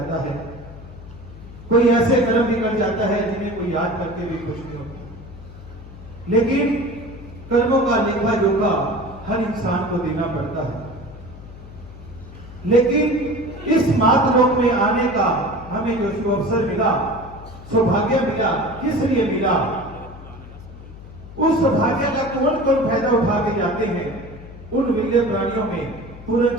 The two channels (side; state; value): left; noise; hum, 16 dB below the sound